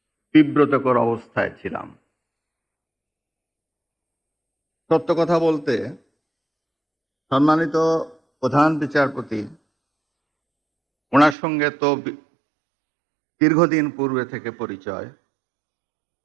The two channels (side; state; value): left; drops out; at 11.4 s